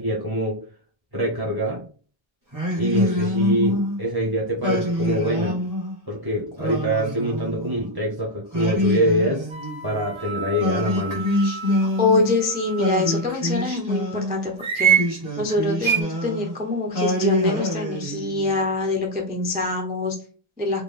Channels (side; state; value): left; late; 1.3 ms